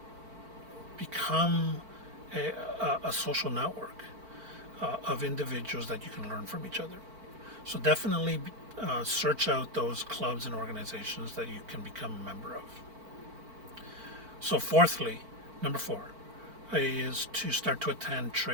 become a social network of individuals that you can learn from each other. So definitely search out those clubs and organizations that you can become a member of. So fourthly, number 4, is to start to attend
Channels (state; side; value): late; left; 4.5 ms